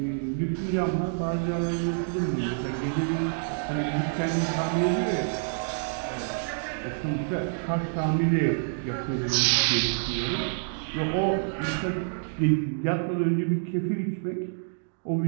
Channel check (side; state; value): left; silent; digital silence